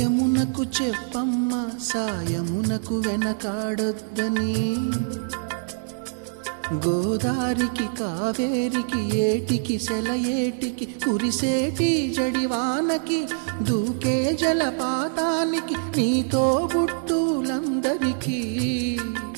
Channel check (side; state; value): left; silent; 62 dB below the other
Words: చెప్పమ్మ సాయమునకు వెనకాడొద్దని గోదారికి కావేరికి ఏటికి సెలయేటికి కురిసేటి జడివానకి దూకే జలపాతానికి నీతో బుట్టులందరికీ